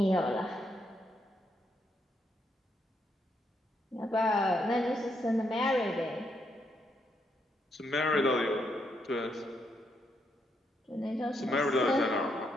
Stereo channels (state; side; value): normal; both; correlation 0.77